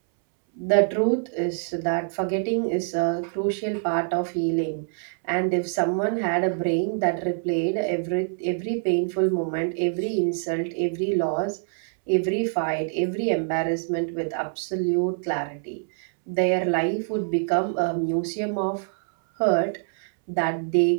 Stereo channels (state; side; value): silent; left; 62 dB below the other